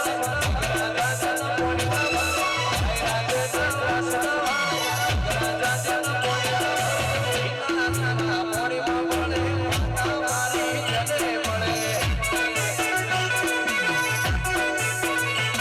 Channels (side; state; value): both; identical; correlation 1.00